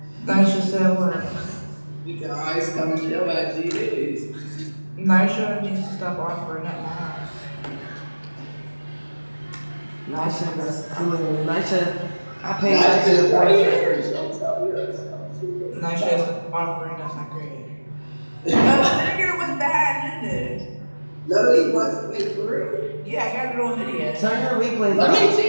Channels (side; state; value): both; inverted; correlation -1.00